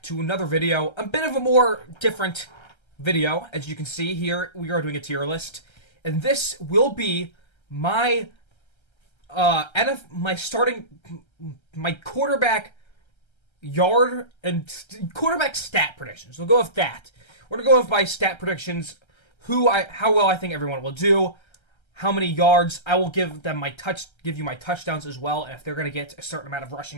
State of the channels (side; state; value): right; late; 1.3 ms